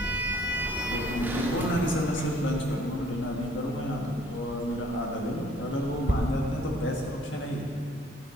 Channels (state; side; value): normal; both; correlation 0.59